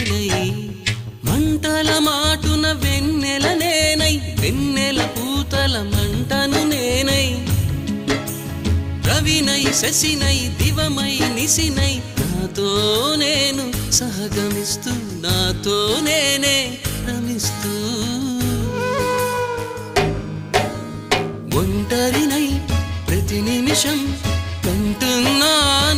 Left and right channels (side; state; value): both; identical; correlation 1.00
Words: మంటల మాటున వెన్నెల నేనై వెన్నెల పూతల మంటను నేనై రవినై శశినై దివమై నిశినై నాతో నేను సహగమిస్తూ నాతో నేనే రమిస్తూ ఒంటరినై ప్రతి నిమిషం